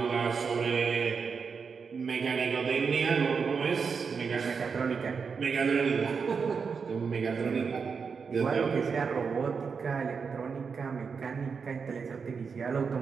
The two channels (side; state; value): left; quieter; 5.6 dB